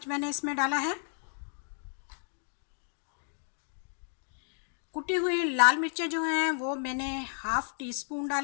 मैंने इसमें डाला है। कुटी हुई लाल मिर्चें जो हैं वो मैंने 1/2 टीस्पून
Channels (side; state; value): right; silent; 56 dB below the other